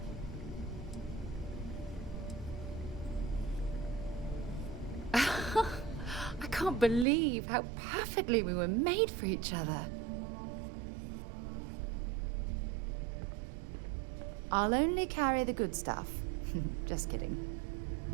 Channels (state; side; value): drops out; left; at 7.1 s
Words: I can't believe how perfectly we were made for each other. I'll only carry the good stuff. Just kidding.